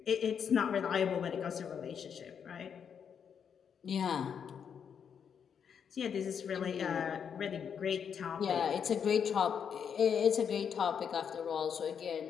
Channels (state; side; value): quieter; right; 7.4 dB